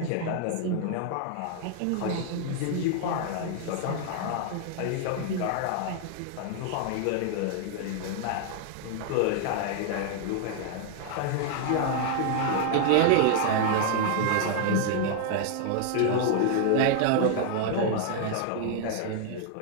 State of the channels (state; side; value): different; both; correlation 0.00